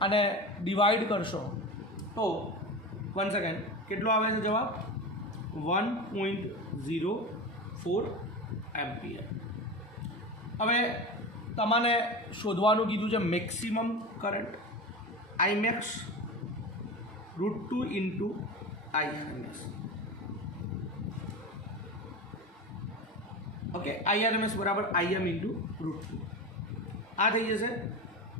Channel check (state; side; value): normal; both; correlation 0.26